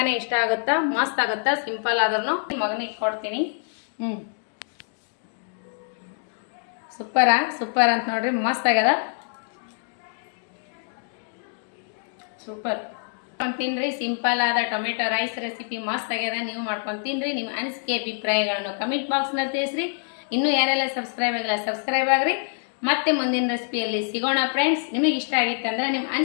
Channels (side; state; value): right; silent; 61 dB below the other